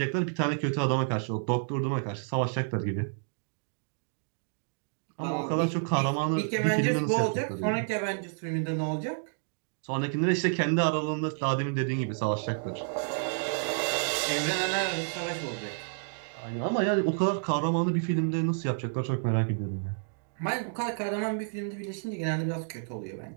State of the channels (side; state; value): left; silent; digital silence